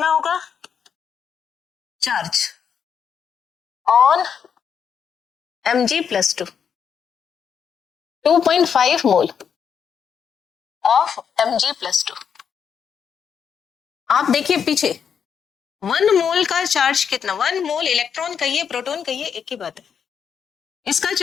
होगा, charge on Mg+2 2.5 mole of Mg+2। आप देखिए पीछे 1 मोल का चार्ज कितना, 1 मोल इलेक्ट्रॉन कहिए प्रोटॉन कहिए एक ही बात है, इसका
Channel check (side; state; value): right; quieter; 7.3 dB